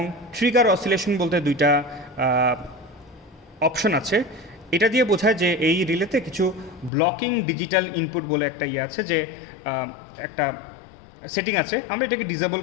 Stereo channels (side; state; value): right; drops out; at 6.9 s